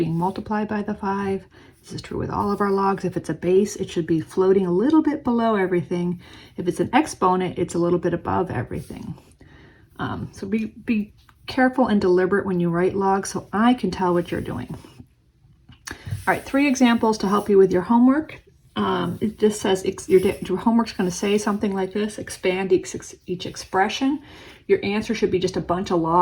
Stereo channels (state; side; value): identical; both; correlation 1.00